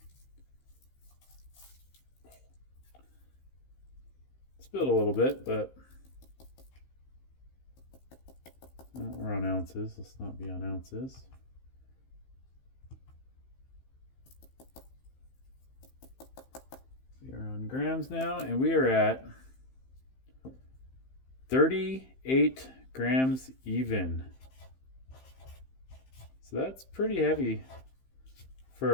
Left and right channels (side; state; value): right; late; 15 ms